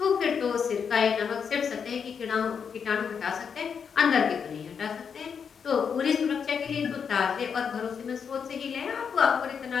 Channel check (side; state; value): right; quieter; 6.7 dB